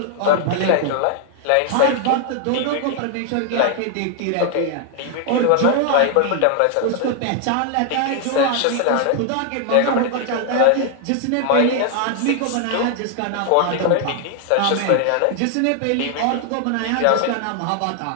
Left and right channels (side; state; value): both; different; correlation 0.00